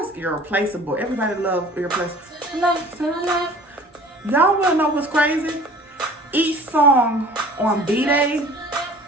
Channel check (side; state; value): both; normal; correlation 0.46